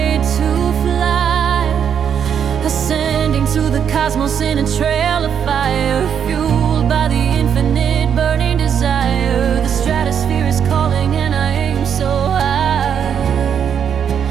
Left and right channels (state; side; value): quieter; left; 8.1 dB